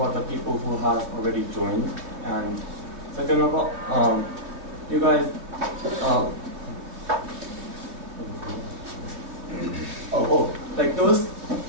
the people who have already joined, and second of all, you guys. Those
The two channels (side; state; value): left; late; 3.0 ms